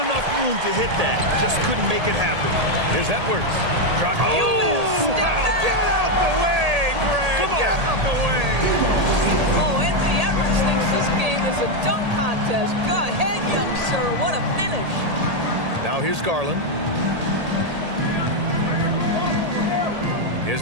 enough room to hit that. Just couldn't make it happen. Here's Edwards. Oh, wow. Get out the way, Greg. Come on. Get out the way. Oh, Anthony Edwards thinks this game is a dunk contest. Go ahead, young sir. What a finish. Now here's Garland. Here's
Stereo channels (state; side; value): late; left; 1.8 ms